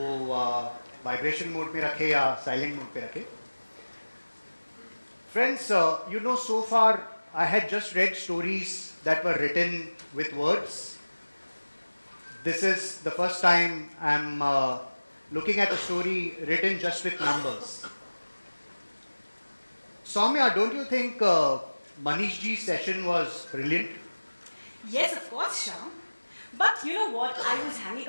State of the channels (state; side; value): inverted; both; correlation -1.00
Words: वाइब्रेशन मोड में रखें या साइलेंट मोड पे रखें. Friends, you know, so far I had just read stories that were written with words. This is the first time I'm looking at a story written just with numbers. Soumya, don't you think Manish ji's session was brilliant? Yes, of course, Shyam. But you know what? I was hanging